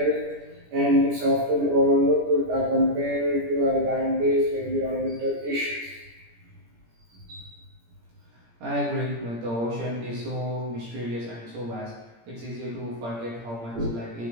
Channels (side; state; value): left; late; 17 ms